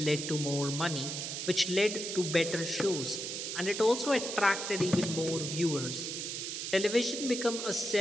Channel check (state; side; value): noise; right; hiss, 4 dB below the sound